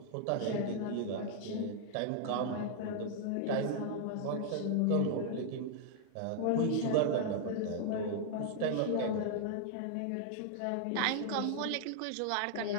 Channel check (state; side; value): different; both; correlation 0.00